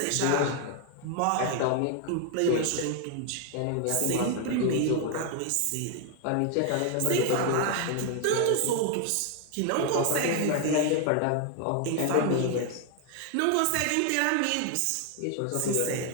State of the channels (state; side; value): different; both; correlation 0.00